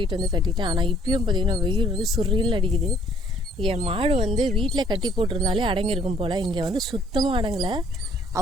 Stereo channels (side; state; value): both; normal; correlation 0.62